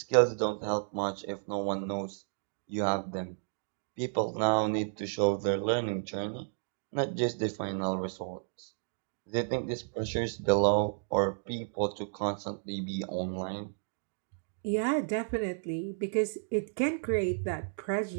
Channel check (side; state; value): left; silent; digital silence